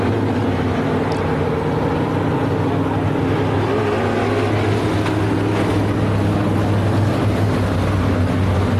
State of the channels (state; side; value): identical; both; correlation 1.00